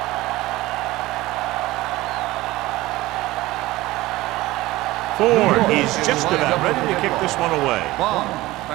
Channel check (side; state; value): left; quieter; 18.4 dB